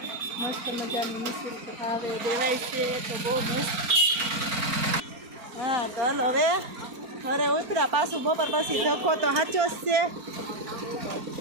મસ્ત મજાનું નિઃશુલ્ક ભાવે દેવાય છે, તો બહુ મસ્ત। હા, તો હાલો હવે ઘરે ઉતર્યા, પાછું બપોર પછી ધક્કો તો સાચો જ છે।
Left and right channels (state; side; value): late; left; 4.4 ms